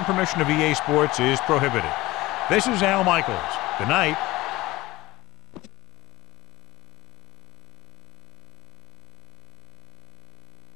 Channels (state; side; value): quieter; right; 19.2 dB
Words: permission of EA Sports is prohibited. This is Al Michaels. Good night.